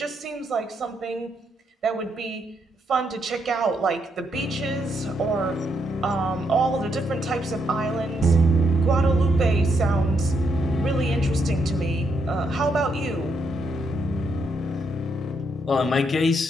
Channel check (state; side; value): normal; both; correlation 0.77